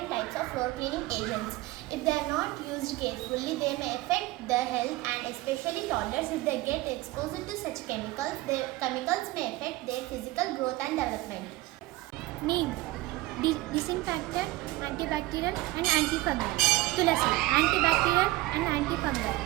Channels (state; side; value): quieter; left; 18.9 dB